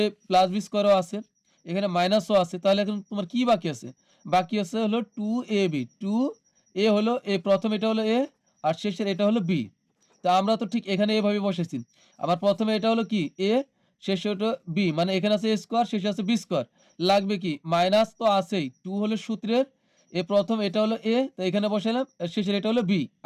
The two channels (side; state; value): both; identical; correlation 1.00